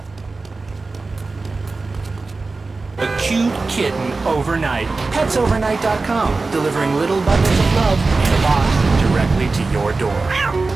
A cute kitten overnight. PetsOvernight.com, delivering little bundles of love in a box directly to your door.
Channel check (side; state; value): left; quieter; 3.8 dB